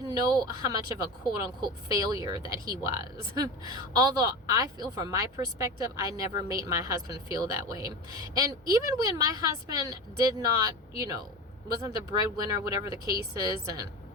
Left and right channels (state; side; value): normal; both; correlation 0.27